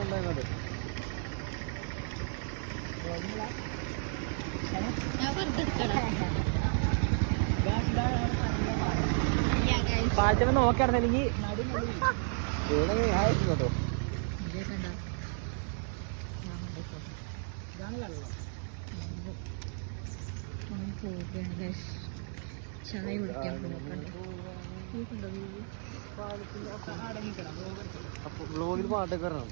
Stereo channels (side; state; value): left; silent; 56 dB below the other